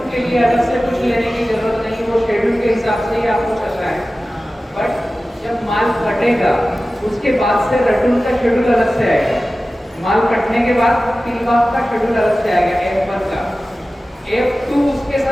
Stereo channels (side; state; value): both; normal; correlation 0.96